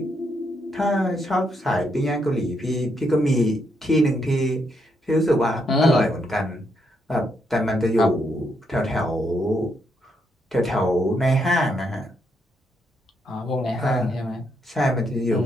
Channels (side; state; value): both; normal; correlation 0.77